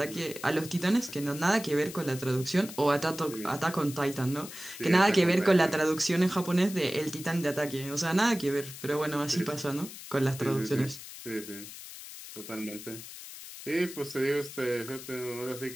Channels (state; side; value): noise; left; hiss, 13 dB below the sound